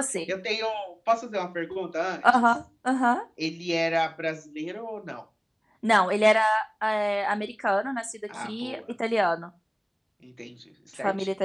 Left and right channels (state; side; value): identical; both; correlation 1.00